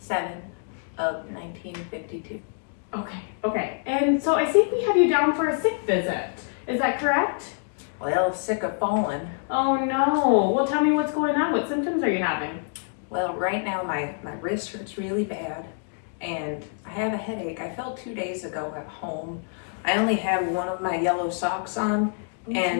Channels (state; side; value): silent; right; 58 dB below the other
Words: of 1952. Okay. And so I think we have you down for a sick visit. Is that correct? Well, sick of falling. Oh no. Well, tell me what's going on. What symptoms are you having? Well, right now my wrist hurts really bad, and I have a headache. I fell 2 days ago at home. I only had one of my yellow socks on,